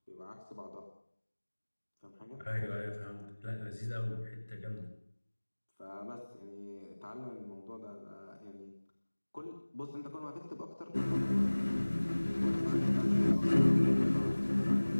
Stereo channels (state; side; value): inverted; both; correlation -1.00